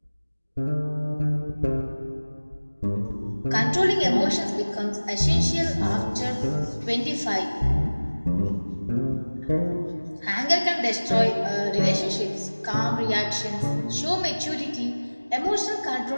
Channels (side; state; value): both; inverted; correlation -1.00